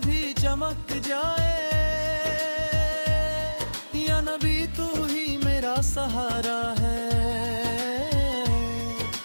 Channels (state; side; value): inverted; both; correlation -1.00